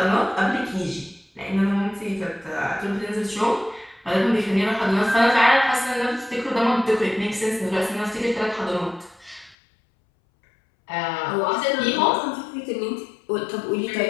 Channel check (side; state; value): right; drops out; at 9.6 s